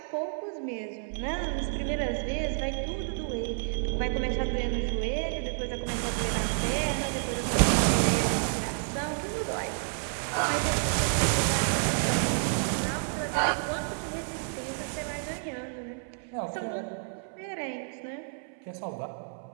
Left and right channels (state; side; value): silent; left; 58 dB below the other